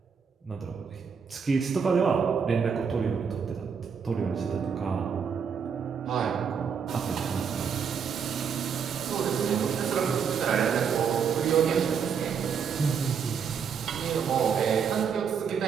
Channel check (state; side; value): quieter; left; 6.7 dB